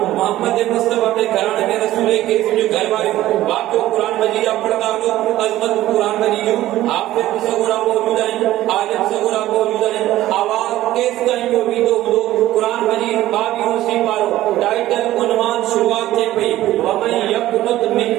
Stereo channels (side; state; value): left; quieter; 14.8 dB